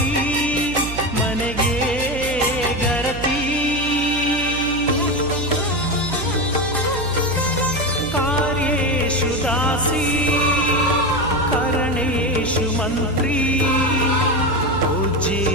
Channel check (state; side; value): noise; right; hum, 9 dB below the sound